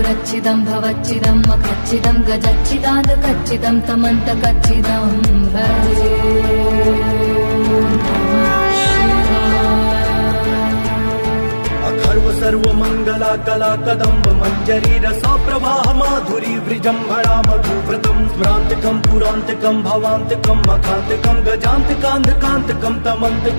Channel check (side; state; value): both; inverted; correlation -1.00